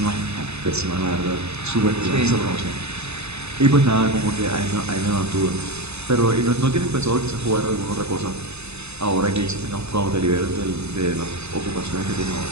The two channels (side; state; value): left; late; 0.80 ms